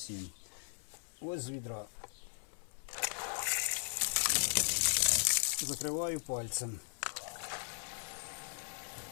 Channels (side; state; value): right; silent; digital silence